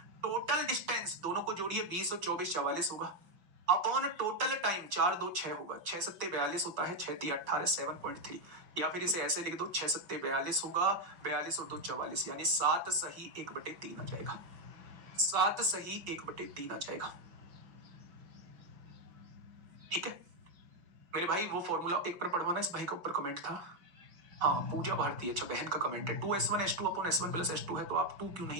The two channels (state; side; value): late; left; 5.8 ms